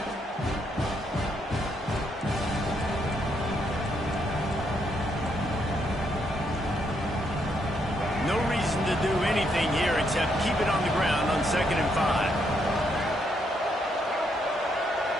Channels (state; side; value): normal; both; correlation 0.76